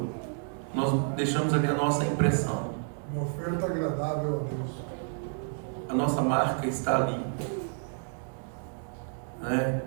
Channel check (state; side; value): silent; left; 58 dB below the other